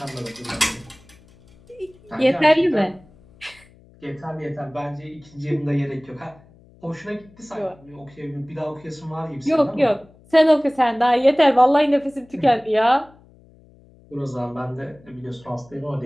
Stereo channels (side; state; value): left; noise; hum, 27 dB below the sound